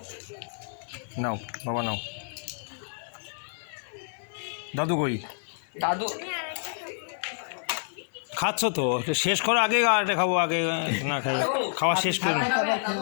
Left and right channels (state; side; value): silent; right; digital silence